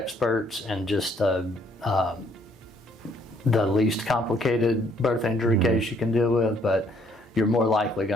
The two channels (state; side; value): normal; both; correlation 0.66